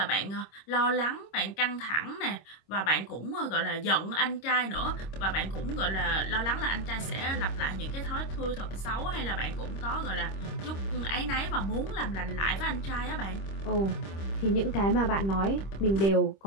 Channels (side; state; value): right; late; 26 ms